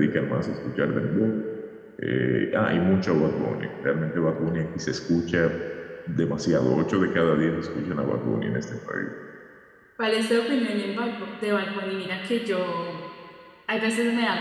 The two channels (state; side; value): identical; both; correlation 1.00